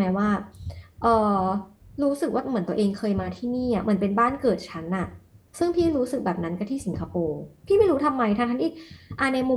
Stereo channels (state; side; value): identical; both; correlation 1.00